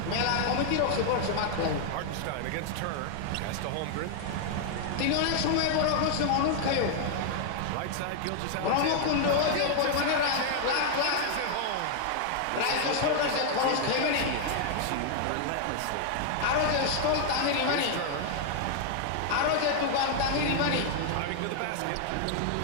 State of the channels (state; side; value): different; both; correlation 0.00